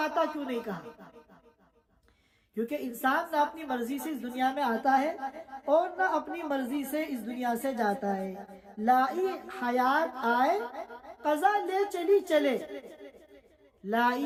کیوں نہیں کہا؟ کیونکہ انسان نہ اپنی مرضی سے اس دنیا میں آتا ہے اور نہ اپنی مرضی سے اس دنیا سے جاتا ہے۔ لائی حیات آئے قضا لے چلی چلے،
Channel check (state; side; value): identical; both; correlation 1.00